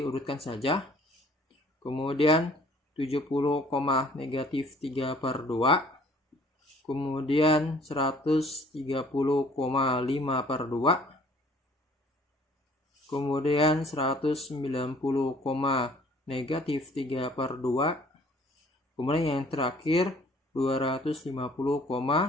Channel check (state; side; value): normal; both; correlation 0.56